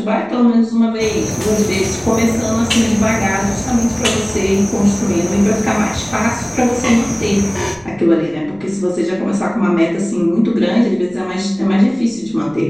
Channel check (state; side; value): noise; left; rumble, 27 dB below the sound